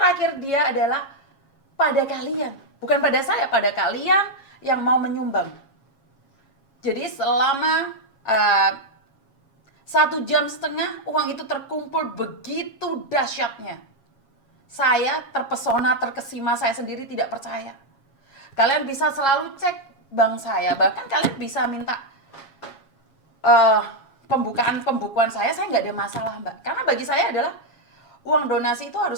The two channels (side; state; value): right; late; 7.3 ms